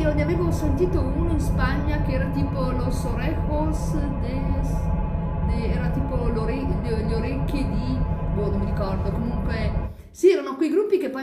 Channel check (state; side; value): identical; both; correlation 1.00